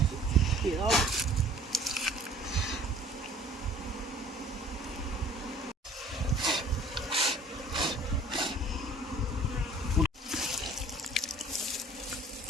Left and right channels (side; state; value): both; normal; correlation 0.51